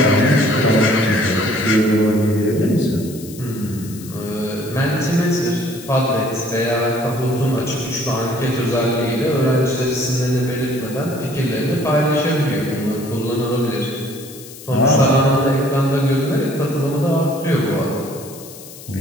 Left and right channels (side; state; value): left; noise; hiss, 16 dB below the sound